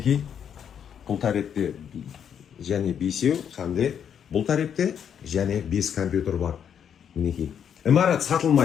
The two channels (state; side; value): quieter; right; 8.4 dB